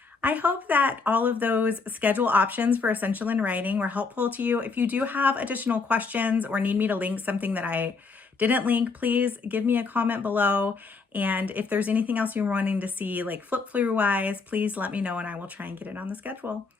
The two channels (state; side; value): quieter; right; 4.5 dB